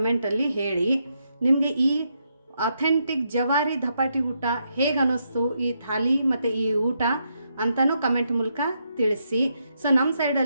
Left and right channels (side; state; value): both; inverted; correlation -0.80